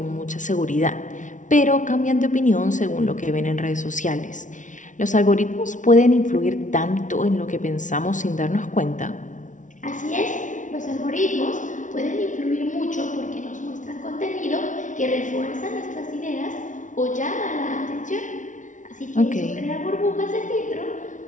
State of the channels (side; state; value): right; late; 0.37 ms